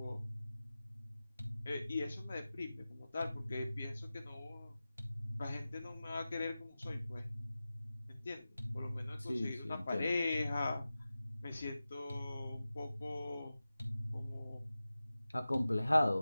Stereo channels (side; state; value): both; inverted; correlation -0.95